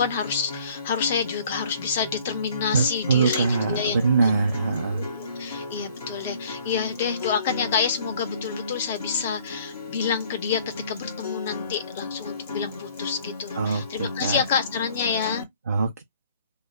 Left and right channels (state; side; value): inverted; both; correlation -0.56